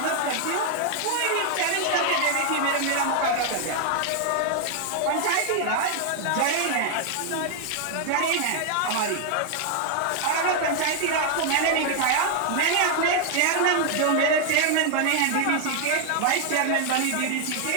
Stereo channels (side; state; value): both; different; correlation 0.00